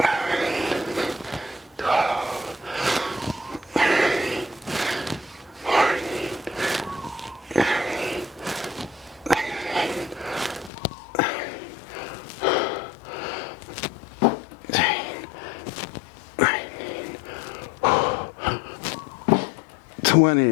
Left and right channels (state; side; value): drops out; right; at 10.7 s